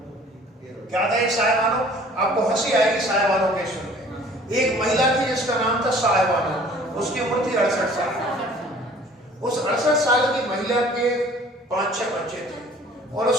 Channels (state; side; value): normal; both; correlation 0.51